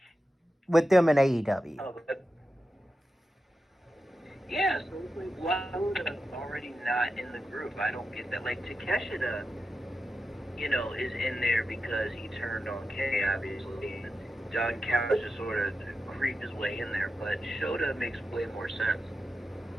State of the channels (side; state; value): both; normal; correlation 0.90